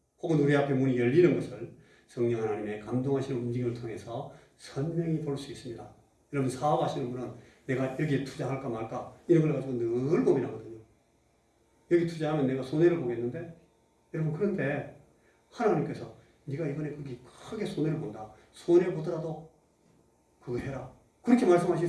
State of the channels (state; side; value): identical; both; correlation 1.00